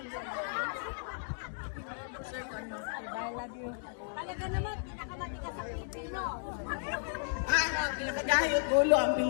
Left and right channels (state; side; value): silent; right; digital silence